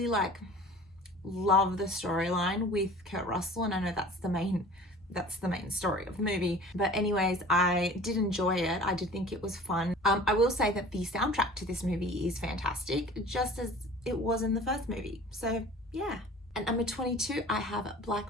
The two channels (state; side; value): normal; both; correlation 0.44